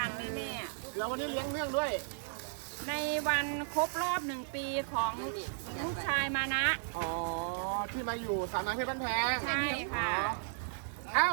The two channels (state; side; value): silent; left; 55 dB below the other